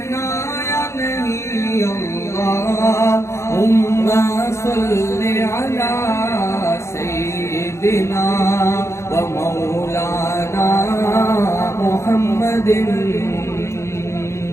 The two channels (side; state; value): right; late; 0.13 ms